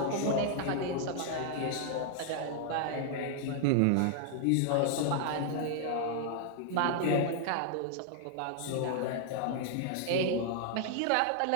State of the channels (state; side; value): different; both; correlation -0.01